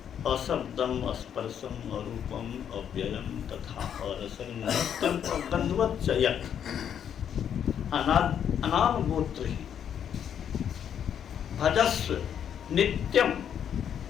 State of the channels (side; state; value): right; quieter; 8.8 dB